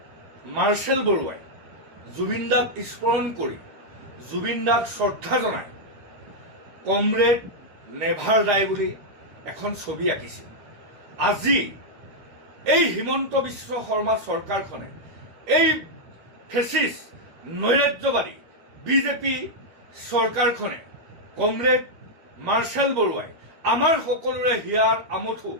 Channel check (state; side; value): late; left; 13 ms